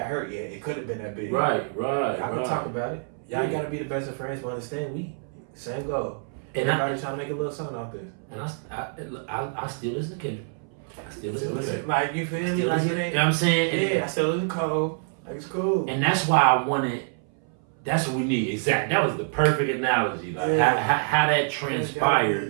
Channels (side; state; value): left; silent; 59 dB below the other